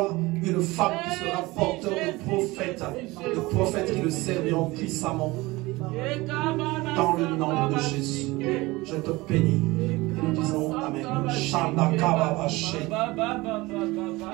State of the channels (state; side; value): quieter; left; 21.4 dB